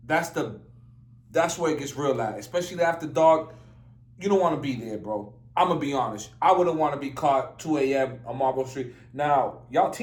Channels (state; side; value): identical; both; correlation 1.00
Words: That's where it gets real at. Especially after dark. You don't want to be there, bro. I'm going to be honest. I wouldn't want to be caught 2 a.m. on Marlboro Street. Now, y'all